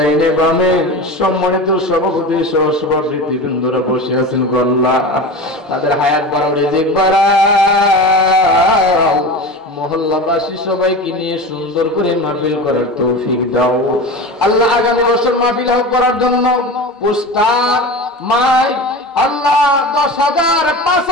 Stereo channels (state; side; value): normal; both; correlation 0.29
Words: বামে সম্মানিত সভাপতি সহ সভাপতি বৃন্দরা বসে আছেন, আল্লাহ তাদের হায়াত বাড়াও, রিজিক বাড়াও। মহল্লাবাসী সবাইকে নিয়ে সুন্দর করে মাহফিল করার তৌফিক দাও আল্লাহ। আগামী বছর মাহফিল করার জন্য পোস্টার, মাইক আল্লাহ 10,000,